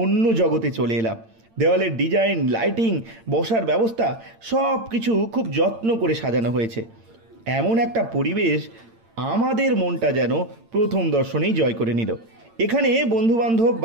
অন্য জগতে চলে এলাম। দেওয়ালের ডিজাইন, লাইটিং, বসার ব্যবস্থা সব কিছু খুব যত্ন করে সাজানো হয়েছে। এমন একটা পরিবেশ আমাদের মনটা যেন প্রথম দর্শনেই জয় করে নিল। এখানে বন্ধুবান্ধব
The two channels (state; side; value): late; left; 8.8 ms